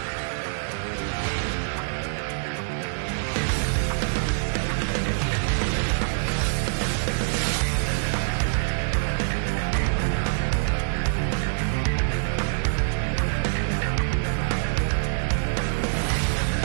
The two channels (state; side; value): silent; left; 62 dB below the other